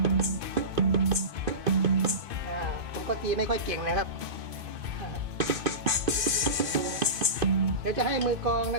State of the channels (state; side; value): late; left; 2.5 ms